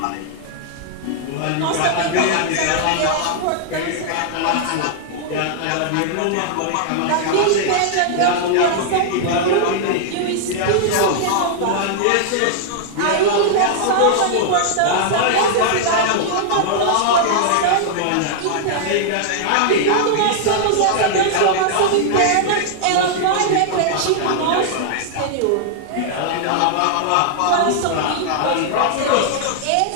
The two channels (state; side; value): different; both; correlation -0.01